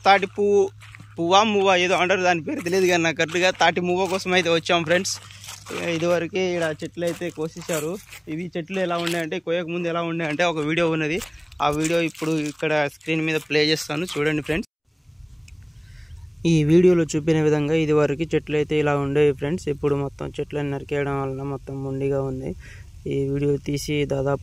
తాటి పువ్వా ఏదో అంటారు, దాని పేరు తెలియదు కానీ నాకు కరెక్ట్గా తాటి మువ్వ కోసం అయితే వచ్చాం ఫ్రెండ్స్. ఇదివరకే ఇక్కడ చెట్లు అయితే కోసేశారు. ఇవి చెట్లు ఎలా ఉన్నాయంటే, కోయక ముందు ఎలా ఉన్నాయంటే ఒక వీడియో ఉన్నది. ఆ వీడియో ఇప్పుడు ఇక్కడ స్క్రీన్ మీద ప్లే చేస్తాను, చూడండి ఫ్రెండ్స్. ఈ వీడియోలో చూపిన విధంగా ఇదివరకు చెట్లు అయితే ఇలా ఉండేవి ఫ్రెండ్స్. ఇప్పుడు మొత్తం చెట్లను నరికేయడం వలన మొత్తం మొండిగా ఉంది. ఈ వీడియో తీసి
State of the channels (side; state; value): both; identical; correlation 1.00